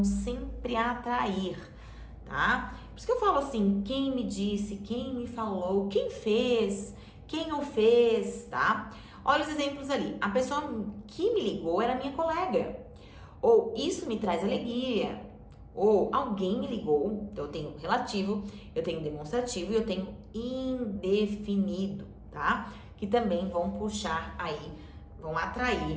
sempre atrair, tá? Por isso que eu falo assim, quem me disse, quem me falou, quem fez, quem o fez, tá? Olha os exemplos ali. A pessoa que me ligou era minha colega. Ou isso me traz alegria. Ou alguém me ligou. Então eu tenho relativo, eu tenho demonstrativo e eu tenho indefinido, tá? Que também vão puxar aí, vão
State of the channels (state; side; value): identical; both; correlation 1.00